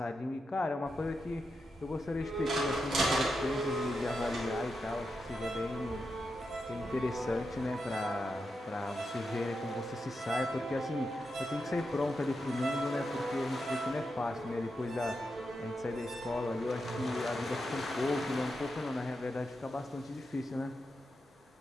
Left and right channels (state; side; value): normal; both; correlation 0.87